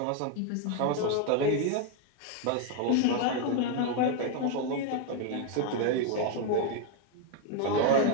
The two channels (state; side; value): different; both; correlation 0.01